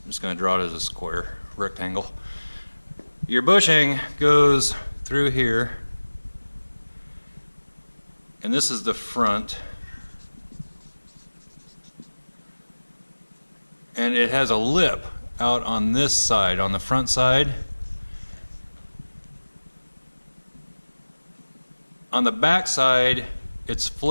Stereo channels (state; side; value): inverted; both; correlation -1.00